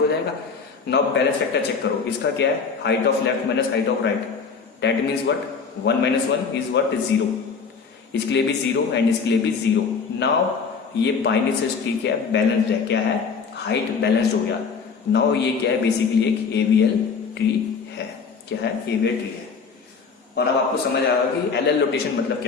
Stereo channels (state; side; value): quieter; right; 5.5 dB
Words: जाएगा। नाउ बैलेंस फैक्टर चेक करो, इसका क्या है? Height of left minus height of right. That means what? 1 - 1 is what? 0। इसके लिए भी 0 एंड इसके लिए भी 0। नाउ ये बाइनरी ट्री क्या है? बैलेंस्ड है। क्या है? हाइट बैलेंस्ड हो गया। नाउ ये क्या है, बेसिकली एक AVL ट्री है। क्या है, AVL ट्री है। और अब आपको समझ आएगा कि LL रोटेशन मतलब